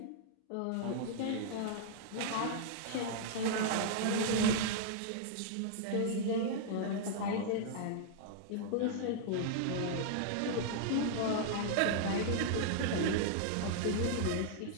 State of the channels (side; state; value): both; different; correlation -0.01